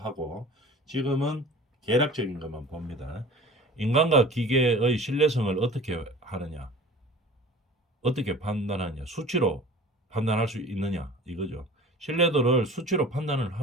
하고 지금은 계략적인 것만 봅니다. 인간과 기계의 신뢰성을 어떻게 하느냐, 어떻게 판단하느냐, 수치로 판단할 수 있느냐 이거죠. 신뢰도를 수치로 판단을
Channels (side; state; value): both; normal; correlation 0.42